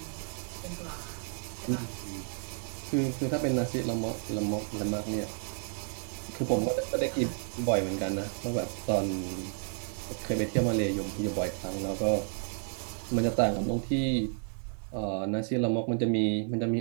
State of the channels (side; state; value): left; silent; 55 dB below the other